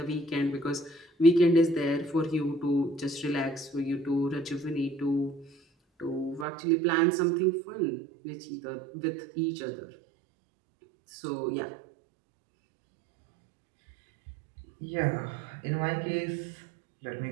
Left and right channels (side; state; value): left; drops out; at 6.5 s